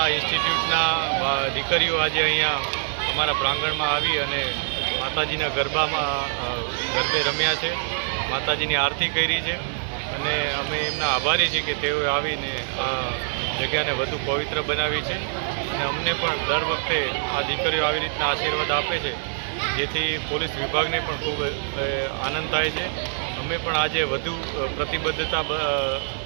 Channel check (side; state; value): left; silent; digital silence